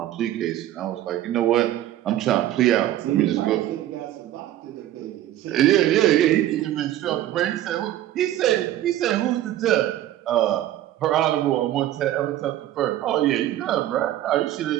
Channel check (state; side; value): quieter; left; 13.3 dB